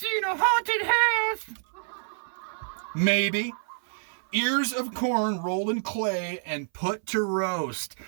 in a haunted house. Maybe. Ears of corn rolled in clay and put to roast.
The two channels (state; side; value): silent; left; 57 dB below the other